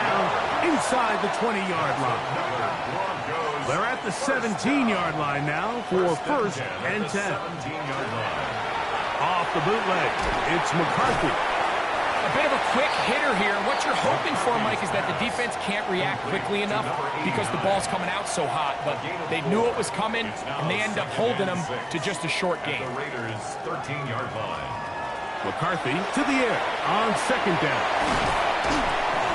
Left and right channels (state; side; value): identical; both; correlation 1.00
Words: inside the 20-yard line. They're at the 17-yard line now for 1st and 10. 17-yard line. Off the bootleg, it's McCarthy. A bit of a quick hitter here. What you're hoping for, Mike, is that the defense can't react quickly enough because the ball's coming out so hot. But they knew it was coming, and they end up holding them to just a short gain. The Raiders' 13-yard line. McCarthy to the air on 2nd down.